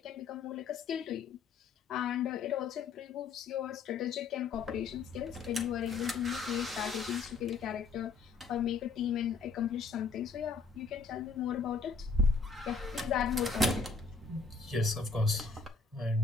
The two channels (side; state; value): right; quieter; 4.7 dB